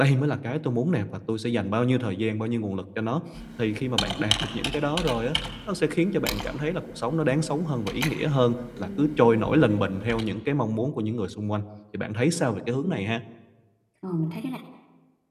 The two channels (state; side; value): identical; both; correlation 1.00